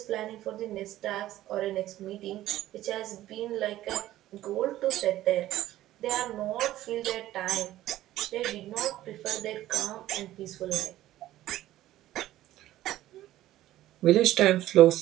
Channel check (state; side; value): quieter; left; 14.5 dB